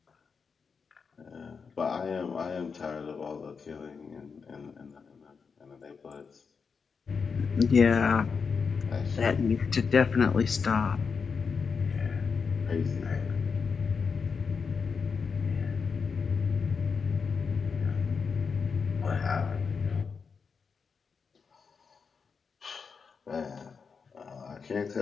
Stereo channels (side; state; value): right; quieter; 5.5 dB